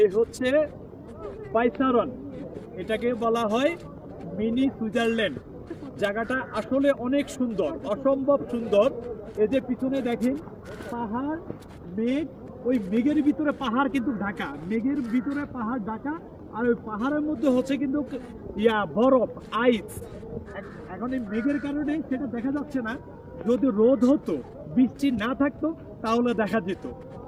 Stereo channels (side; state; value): both; identical; correlation 1.00